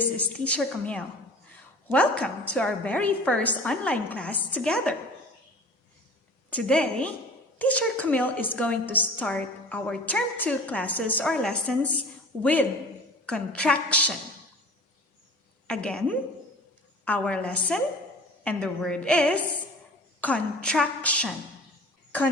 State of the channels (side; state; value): both; normal; correlation 0.42